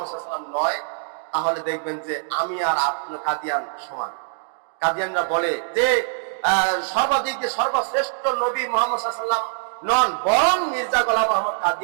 সাল্লাল্লাহু আলাইহি ওয়াসাল্লাম নয়, তাহলে দেখবেন যে আমি আর আপনার কাদিয়ান সমান। কাদিয়ানরা বলে যে সর্বদিক দিয়ে সর্বশ্রেষ্ঠ নবী মুহাম্মদ সাল্লাল্লাহু আলাইহি ওয়াসাল্লাম নন, বরং মির্জা গোলাম আহমদ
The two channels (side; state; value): left; silent; digital silence